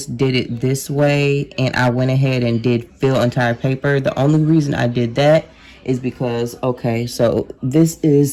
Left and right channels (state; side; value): identical; both; correlation 1.00